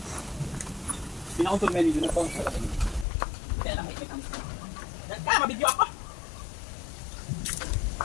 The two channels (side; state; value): right; drops out; at 3.1 s